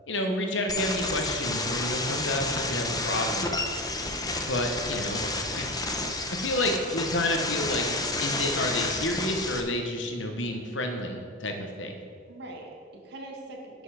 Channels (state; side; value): normal; both; correlation 0.20